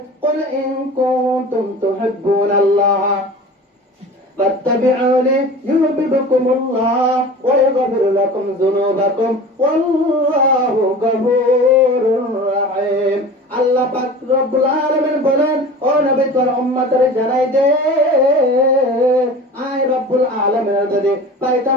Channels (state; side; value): normal; both; correlation 0.37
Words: कुल इन कुंतुम तुहिब्बून अल्लाह فاتبعوني يحببكم الله ويغفر لكم ذنوبكم والله غفور رحيم আল্লাহ পাক রব্বুল আলামিন বলেন ও নবী তোর উম্মতের জানাই দে আয় রব্বুল আলামিনের যদি পাইতা